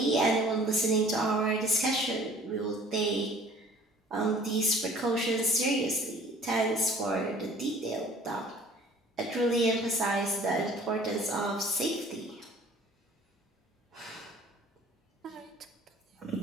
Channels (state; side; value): normal; both; correlation 0.50